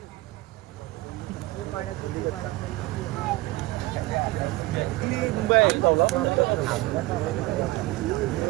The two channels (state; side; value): quieter; left; 19.9 dB